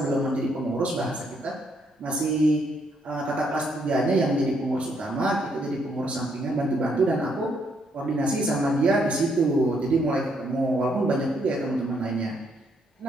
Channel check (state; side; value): normal; both; correlation 0.73